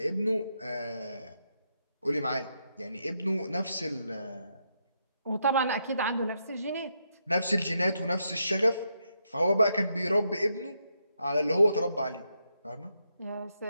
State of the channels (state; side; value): inverted; both; correlation -0.80